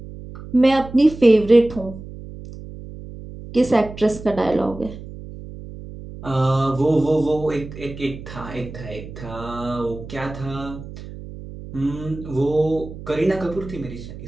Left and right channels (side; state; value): right; noise; hum, 13 dB below the sound